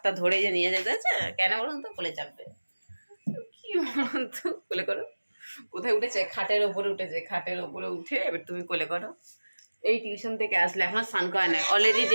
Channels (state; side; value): inverted; both; correlation -1.00